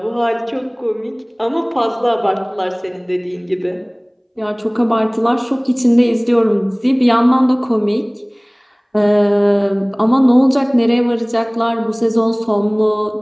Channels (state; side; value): identical; both; correlation 1.00